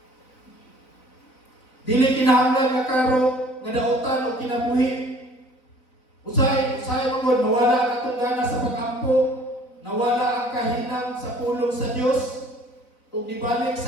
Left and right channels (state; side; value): late; right; 4.0 ms